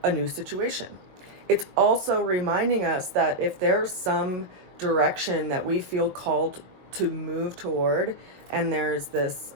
a new situation. It's also reminding us that if there's some direction that we feel called to move toward and there's this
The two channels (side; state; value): left; late; 22 ms